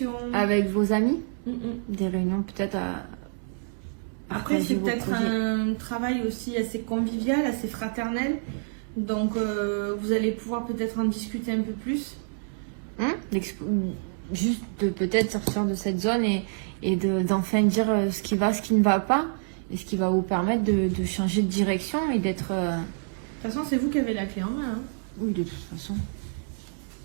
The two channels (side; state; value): left; silent; digital silence